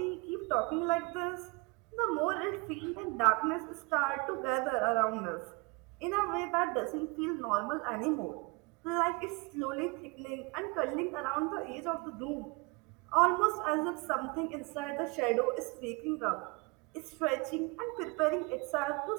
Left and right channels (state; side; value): quieter; left; 26.9 dB